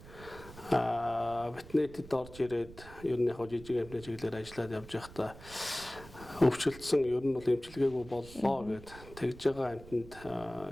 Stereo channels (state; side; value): noise; right; rumble, 17 dB below the sound